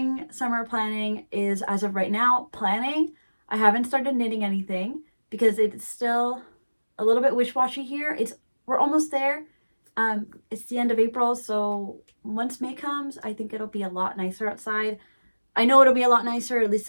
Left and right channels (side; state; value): both; inverted; correlation -1.00